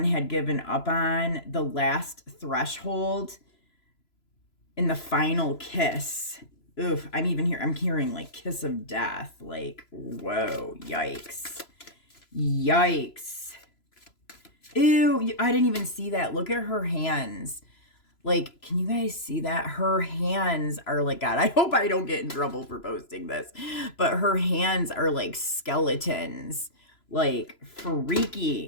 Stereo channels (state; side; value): late; right; 3.0 ms